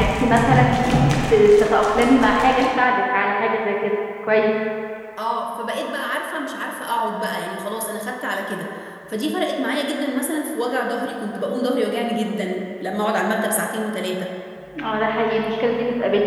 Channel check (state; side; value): identical; both; correlation 1.00